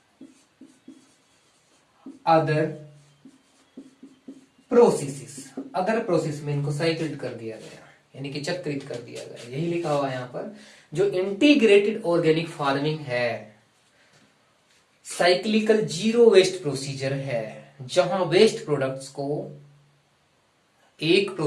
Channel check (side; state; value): both; identical; correlation 1.00